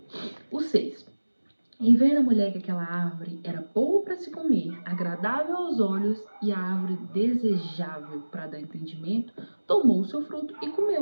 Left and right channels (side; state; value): both; inverted; correlation -1.00